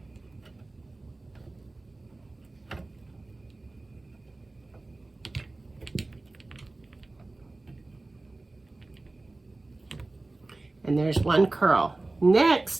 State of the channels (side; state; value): left; quieter; 3.0 dB